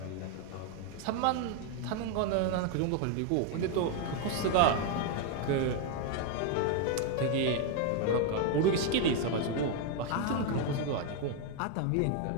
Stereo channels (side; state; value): both; different; correlation 0.01